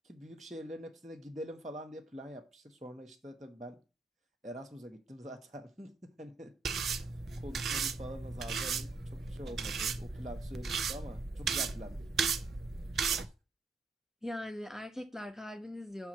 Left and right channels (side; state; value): left; quieter; 3.9 dB